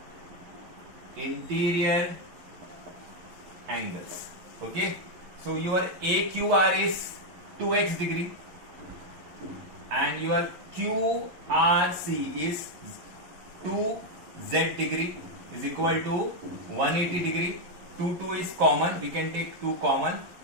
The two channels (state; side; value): late; left; 11 ms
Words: Interior angles. Okay, so your AQR is 2x degree and your QRC is 2z degree is equal to 180 degree. 2 is common, we can take 2 common,